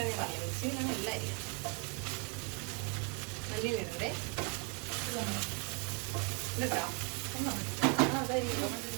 ഞാൻ പറഞ്ഞത്, മിക്സിങ്ങിലാണ് എല്ലാം അരിയാം. മല്ലിയിലിടണ്ടേ ഇട്ടാ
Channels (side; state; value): left; quieter; 30.2 dB